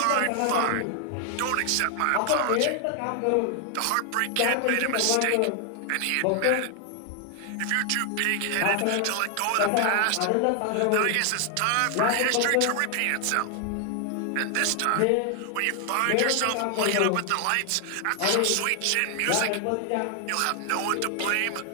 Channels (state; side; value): different; both; correlation 0.00